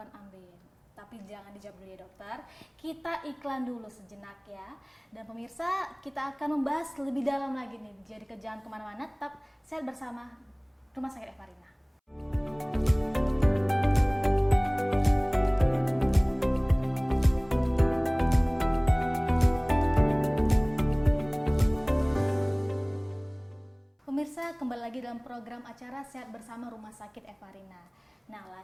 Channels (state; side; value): identical; both; correlation 1.00